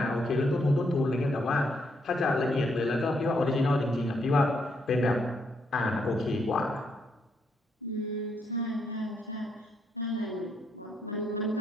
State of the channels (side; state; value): both; normal; correlation 0.76